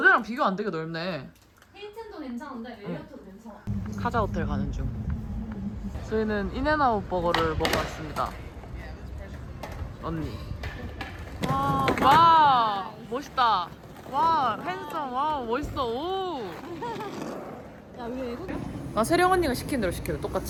비교 안 되게 넓네. 힐튼도 괜찮은데 메리어트도 괜찮아. 카자 호텔 가는 중. 저희는 인앤아웃 버거를 먹어 왔습니다. 언니. 와 멋있다. 와 핸섬. 와 멋있어. 오. 야, 왜 외국이야? 나 세령 언니가 시킨 대로 시켜요.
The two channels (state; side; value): identical; both; correlation 1.00